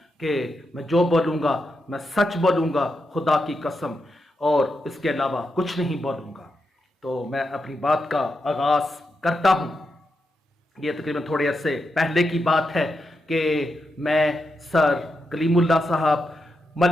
कि मैं जो बोलूंगा मैं सच बोलूंगा, खुदा की कसम, और इसके अलावा कुछ नहीं बोलूंगा। तो मैं अपनी बात का आगाज करता हूं। ये तकरीबन थोड़े अरसे पहले की बात है कि मैं सर कलीमुल्लाह साहब,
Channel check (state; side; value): normal; both; correlation 0.85